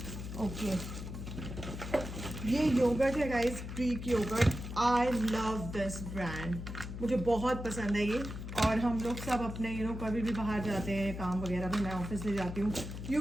ओके, ये योगर्ट है guys, Greek yogurt. I love this brand, मुझे बहुत पसंद है ये। और हम लोग सब अपने कभी भी बाहर जाते हैं, काम वगैरह भी मैं ऑफिस ले जाती हूँ, यू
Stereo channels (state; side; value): noise; left; hum, 8 dB below the sound